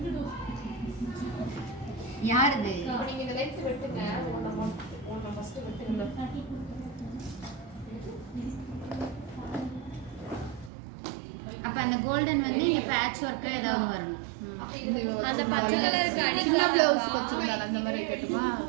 யாருது? அப்போ அந்த கோல்டன் வந்து இங்கே பேட்ச் ஒர்க்காக ஏதாவது வரணும். அந்த பச்சை கலருக்கு அடிக்கலாம் ப்ளவுஸ் வச்சிருந்தாங்க அந்த மாதிரி கேட்டுமா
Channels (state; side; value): drops out; left; at 10.7 s